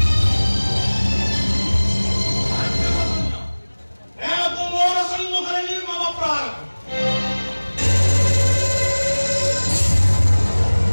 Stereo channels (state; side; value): inverted; both; correlation -1.00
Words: ଏହାକୁ ମୋର ସମ୍ମୁଖରେ ନିର୍ମମ ପ୍ରହାର